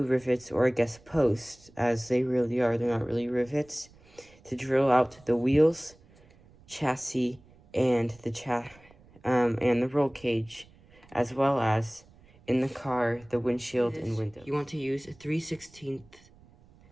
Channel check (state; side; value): noise; right; rumble, 27 dB below the sound